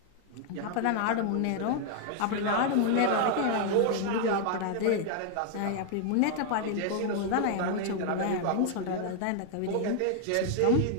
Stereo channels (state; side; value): different; both; correlation 0.00